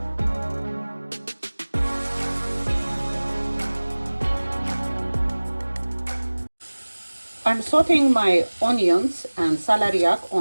I'm sauteing my onions and celeriac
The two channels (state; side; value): inverted; both; correlation -1.00